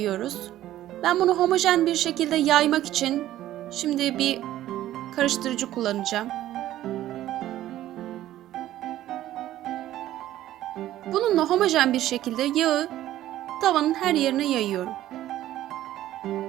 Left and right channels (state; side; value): quieter; left; 13.6 dB